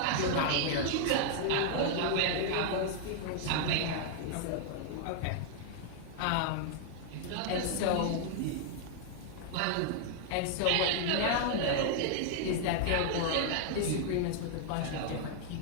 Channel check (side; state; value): both; different; correlation 0.00